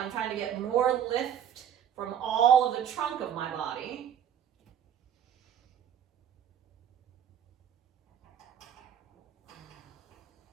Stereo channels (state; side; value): quieter; left; 9.2 dB